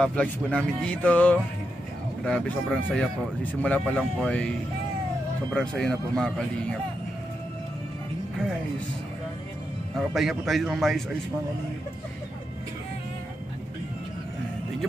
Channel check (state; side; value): normal; both; correlation 0.85